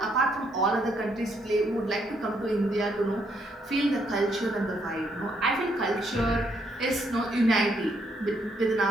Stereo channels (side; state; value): both; normal; correlation 0.73